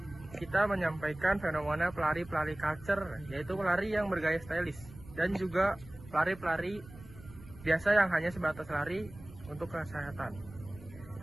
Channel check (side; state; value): right; noise; rumble, 18 dB below the sound